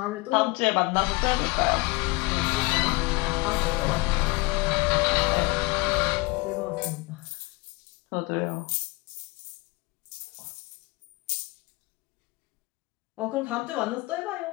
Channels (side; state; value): right; quieter; 24.6 dB